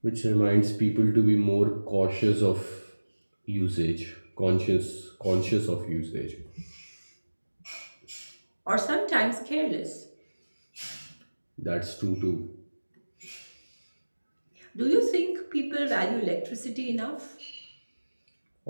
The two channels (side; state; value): both; inverted; correlation -1.00